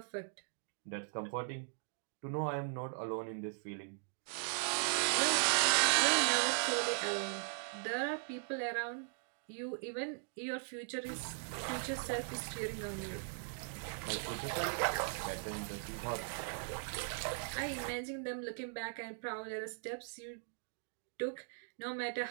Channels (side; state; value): left; silent; digital silence